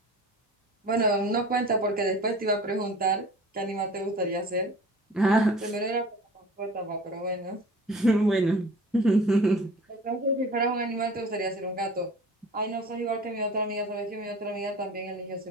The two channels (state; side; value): normal; both; correlation 0.42